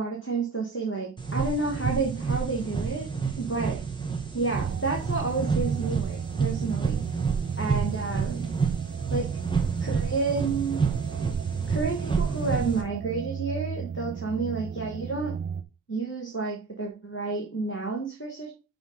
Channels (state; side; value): quieter; left; 4.6 dB